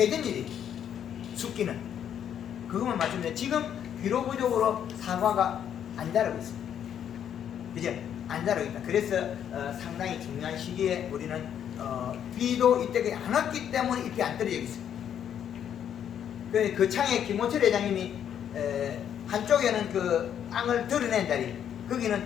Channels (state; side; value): quieter; right; 9.3 dB